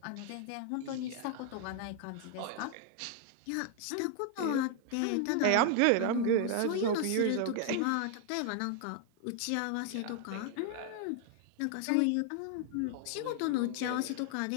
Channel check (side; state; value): both; different; correlation 0.00